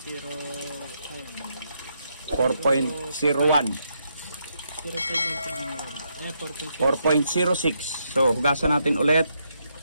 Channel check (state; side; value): inverted; both; correlation -0.79